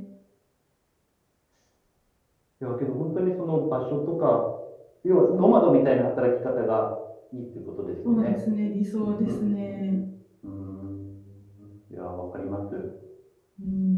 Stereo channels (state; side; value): identical; both; correlation 1.00